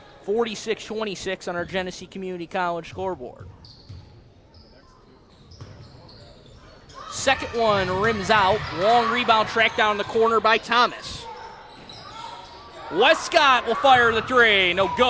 46-26 on our Genesee Community College scoreboard. Second one rims out. Long rebound tracked down in the corner by Thomas. Westcott will fire the three. No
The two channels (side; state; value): both; identical; correlation 1.00